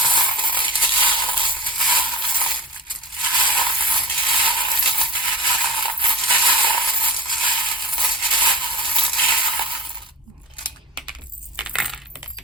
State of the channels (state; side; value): normal; both; correlation 0.37